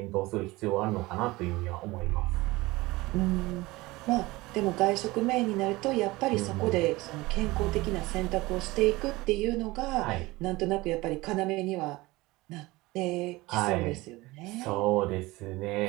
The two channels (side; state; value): left; quieter; 20.8 dB